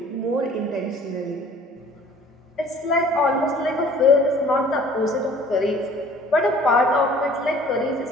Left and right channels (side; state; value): both; normal; correlation 0.51